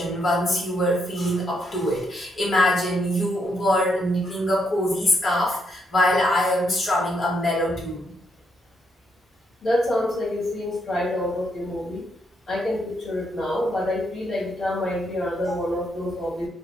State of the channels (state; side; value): normal; both; correlation 0.77